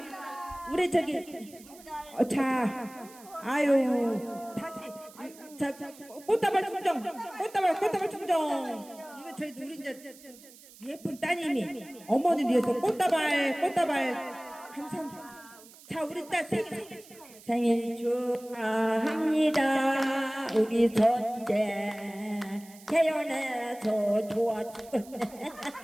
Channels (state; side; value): noise; right; hiss, 21 dB below the sound